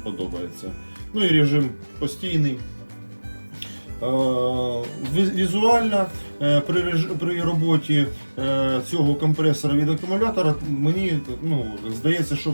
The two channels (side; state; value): both; inverted; correlation -1.00